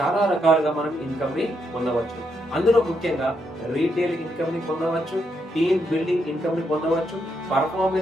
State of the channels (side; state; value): both; normal; correlation 0.79